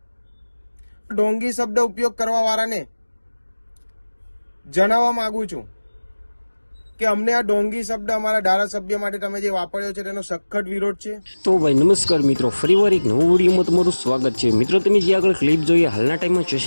ઢોંગી શબ્દ ઉપયોગ કરવા વાળાને જણાવવા માંગુ છું કે અમને આ ઢોંગી શબ્દ અમારા ધારાસભ્ય માટે તમે જે વાપર્યો છે તેનો સખત વિરોધ છે. તો ભાઈ નમસ્કાર મિત્રો, ફરીવાર એક નવો વિડીયોમાં તમારું સ્વાગત છે. મિત્રો તમે જે આગળ ક્લિપ જોઈએ હાલના ટાઈમમાં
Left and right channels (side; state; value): both; inverted; correlation -1.00